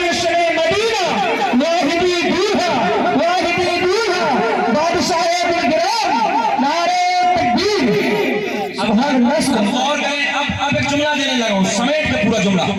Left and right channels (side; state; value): both; identical; correlation 1.00